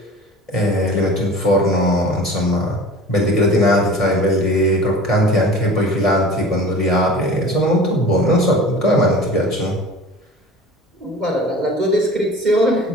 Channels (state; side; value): normal; both; correlation 0.40